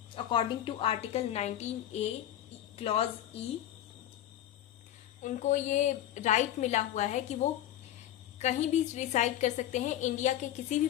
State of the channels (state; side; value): quieter; right; 12.2 dB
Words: according to article 19A clause E। उनको ये राइट मिला हुआ है कि वो कहीं भी रिसाइड कर सकते हैं, इंडिया के किसी भी